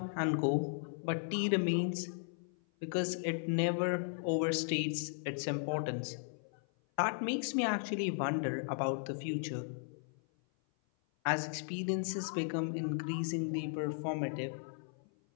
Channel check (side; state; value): right; silent; 54 dB below the other